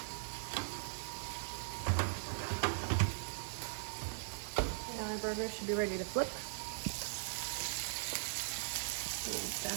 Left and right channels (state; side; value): silent; left; digital silence